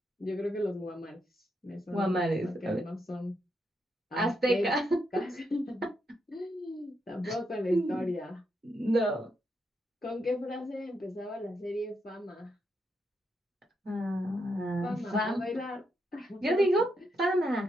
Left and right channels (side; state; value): both; normal; correlation 0.81